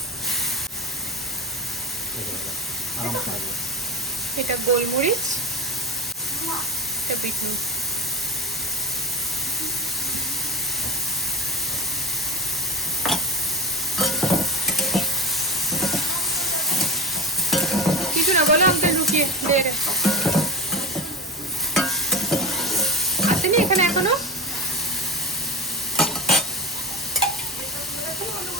এটা গোলমরিচ, এটা বিট নুন। কিছু না বলো, আমাকে লুকিয়ে দেখে আসেনি এখানে এখনো।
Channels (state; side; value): normal; both; correlation 0.24